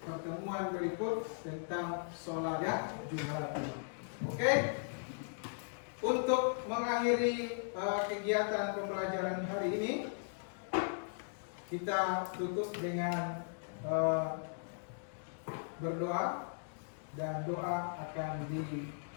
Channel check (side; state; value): right; silent; digital silence